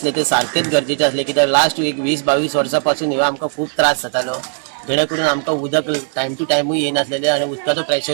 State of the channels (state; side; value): silent; left; digital silence